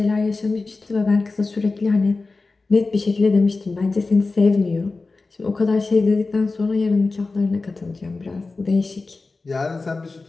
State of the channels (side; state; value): right; quieter; 3.7 dB